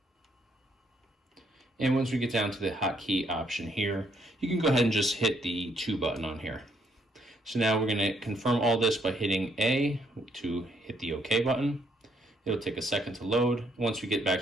And once we get down to the hotkey option here, you can go ahead and just hit the 2 button on here. So now we're going to confirm all this by hitting A to hit the OK button. It'll take a second to load. Once we get back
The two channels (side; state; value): both; normal; correlation 0.71